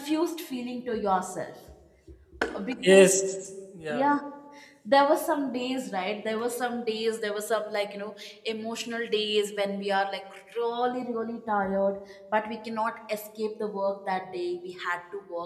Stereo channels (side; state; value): both; identical; correlation 1.00